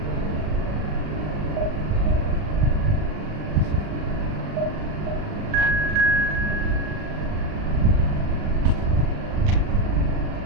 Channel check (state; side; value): late; left; 39 ms